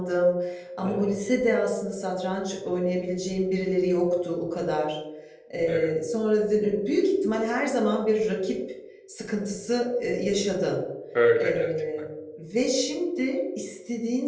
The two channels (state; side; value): identical; both; correlation 1.00